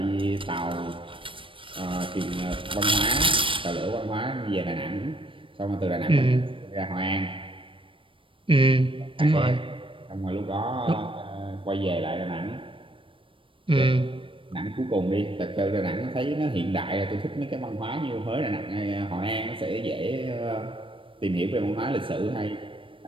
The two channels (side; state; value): left; late; 0.25 ms